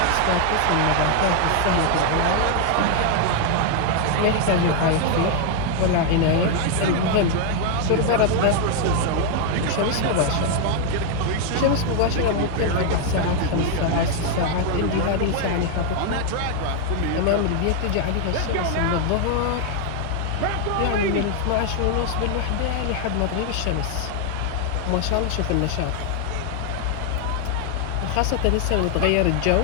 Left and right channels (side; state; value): both; different; correlation 0.00